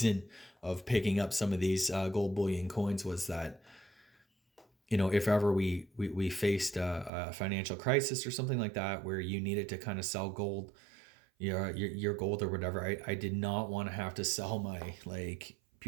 of picking up some of these gold bullion coins was that, if ever we faced a financial crisis or something like that, where you needed to kind of sell gold, your gold or whatever, I did not want to have to sell my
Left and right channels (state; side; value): drops out; left; at 7.1 s